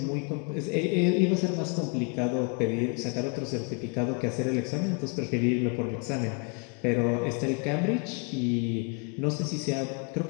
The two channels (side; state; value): right; quieter; 35.2 dB